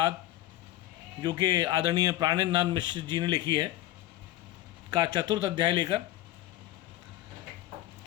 जो कि आदरणीय प्राणेंद्रनाथ मिश्र जी ने लिखी है, का चतुर्थ अध्याय लेकर।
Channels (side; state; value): right; quieter; 15.3 dB